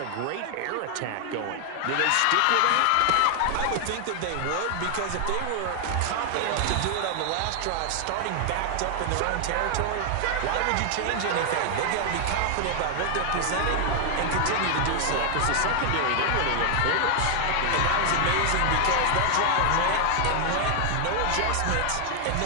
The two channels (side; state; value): both; different; correlation 0.00